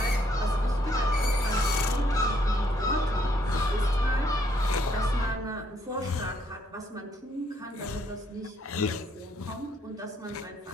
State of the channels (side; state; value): both; normal; correlation 0.70